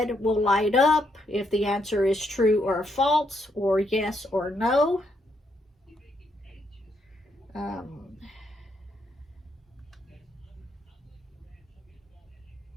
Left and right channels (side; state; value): both; normal; correlation 0.76